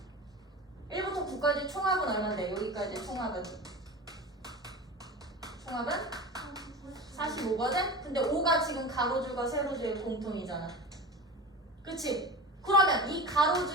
1부터 9까지 총합은 얼마인데? 여기까지 총합은? 총합은? 45거든? 근데 5가 지금 가로줄과 세로줄의 공통이잖아. 그치? 그러면 이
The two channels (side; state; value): both; normal; correlation 0.31